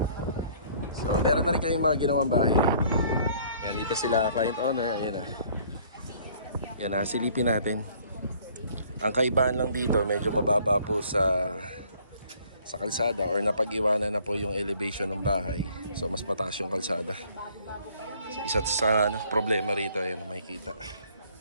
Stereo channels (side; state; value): both; inverted; correlation -0.58